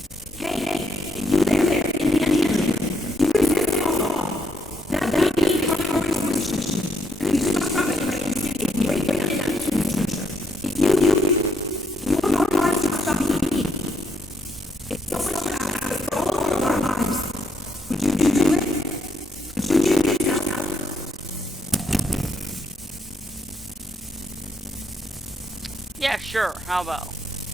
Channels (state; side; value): normal; both; correlation 0.74